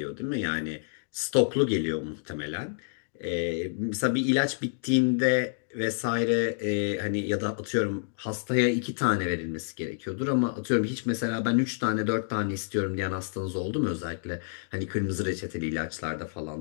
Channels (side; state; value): right; silent; digital silence